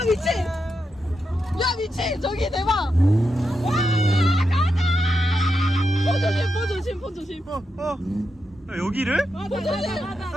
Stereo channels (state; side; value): normal; both; correlation 0.86